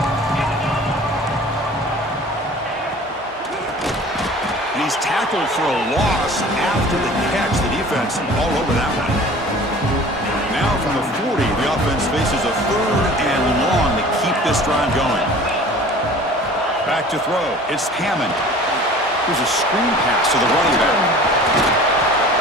He's tackled for a loss after the catch. The defense all over that one. Now from the 40, the offense faces a third and long to keep this drive going. Back to throw. It's Hammond. Here's a screen pass to the running back.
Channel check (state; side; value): normal; both; correlation 0.44